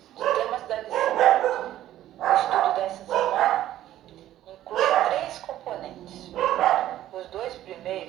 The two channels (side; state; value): left; quieter; 13.1 dB